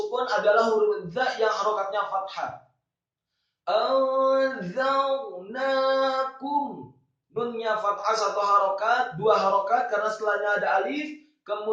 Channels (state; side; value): identical; both; correlation 1.00